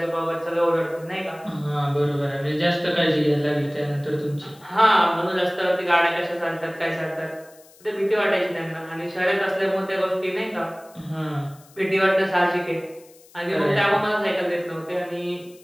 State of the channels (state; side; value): noise; left; hiss, 26 dB below the sound